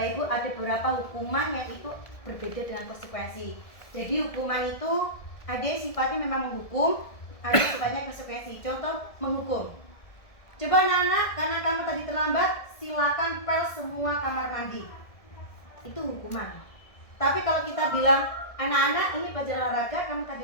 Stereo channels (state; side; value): late; right; 1.7 ms